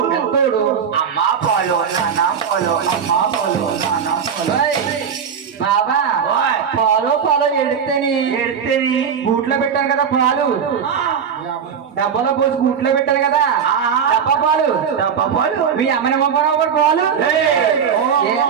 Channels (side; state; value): left; quieter; 7.2 dB